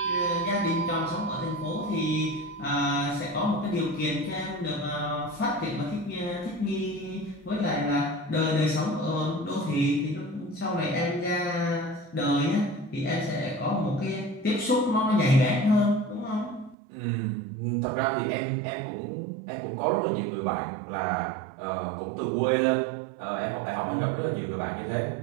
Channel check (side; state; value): left; drops out; at 16.8 s